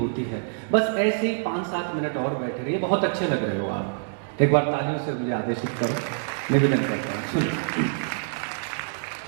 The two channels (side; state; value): left; silent; digital silence